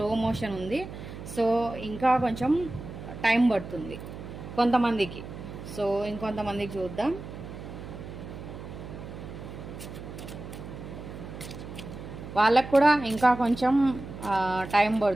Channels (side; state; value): right; noise; hum, 11 dB below the sound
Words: మోషన్ ఉంది. సో ఇంకా కొంచెం టైం పడుతుంది కొంతమందికి. సో ఇంకొంతమందికి చూద్దాం. వాళ్ళకు కూడా ఇంకా కొంచెం టైం